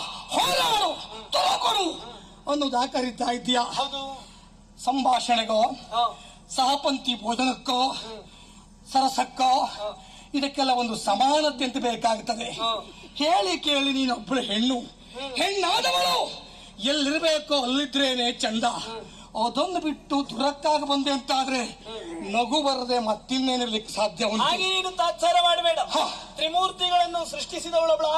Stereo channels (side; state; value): both; identical; correlation 1.00